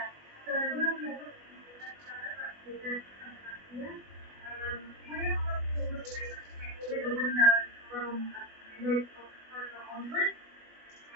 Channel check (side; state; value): left; late; 21 ms